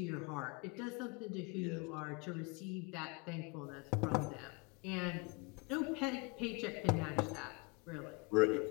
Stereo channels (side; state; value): right; quieter; 29.1 dB